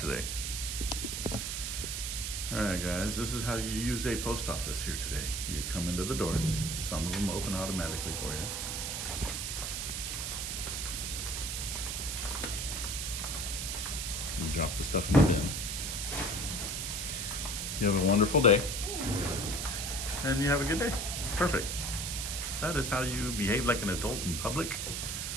All right, guys, this is how you use a post office here today. You come into the doors. Some of them open automatically for you. You drop the stuff in the bin. You have a wonderful day. And you have a good day. Perfect. That is how you behave like an adult in public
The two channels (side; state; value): right; noise; hiss, 2 dB below the sound